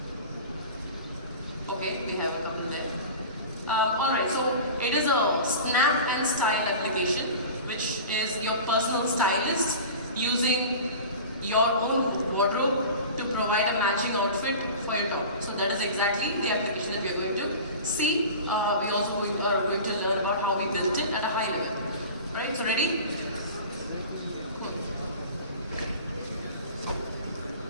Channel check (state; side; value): inverted; both; correlation -0.36